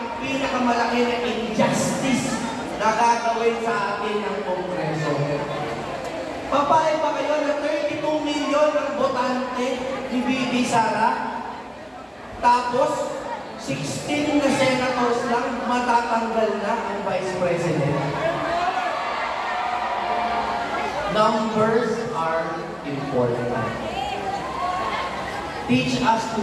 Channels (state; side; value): identical; both; correlation 1.00